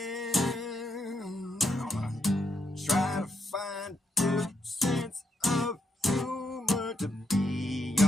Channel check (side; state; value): both; normal; correlation 0.80